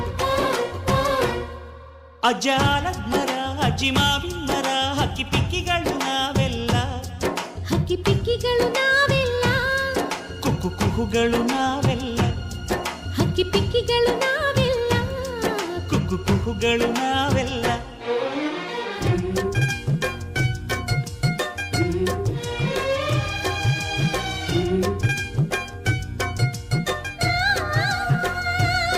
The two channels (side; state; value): both; identical; correlation 1.00